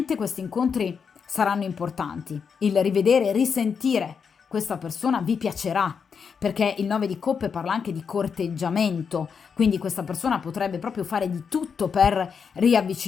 questi incontri saranno importanti. Il rivedere e risentire questa persona vi piacerà, perché il 9 di coppe parla anche di corteggiamento, quindi questa persona potrebbe proprio fare di tutto per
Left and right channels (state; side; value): quieter; right; 6.3 dB